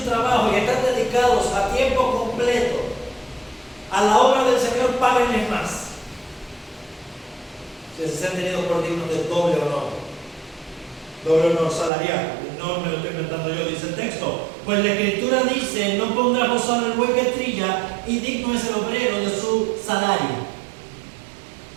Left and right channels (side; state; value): left; drops out; at 11.9 s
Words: trabajo y están dedicados a tiempo completo a la obra del Señor, páguenles más. Si se han tenido por dignos de doble honor salarial. No me lo estoy inventando yo, dice el texto. Pues la Escritura dice: no pondrá gozar el buey que trilla, y digno es el obrero de su salario.